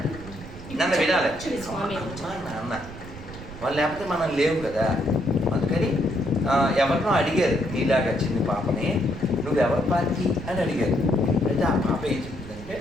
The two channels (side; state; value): right; noise; rumble, 14 dB below the sound